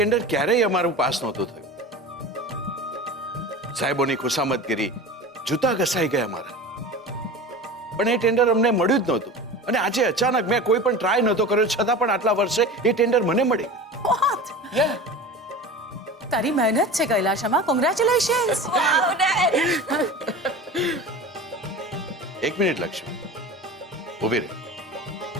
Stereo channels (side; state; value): both; normal; correlation 0.33